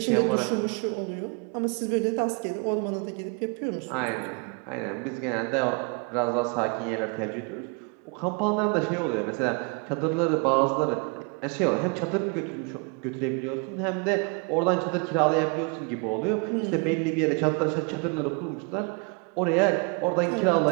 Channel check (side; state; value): left; quieter; 34.5 dB